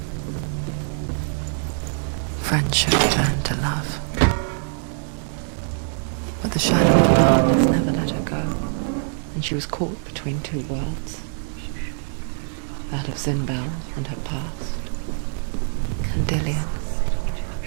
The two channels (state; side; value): silent; left; digital silence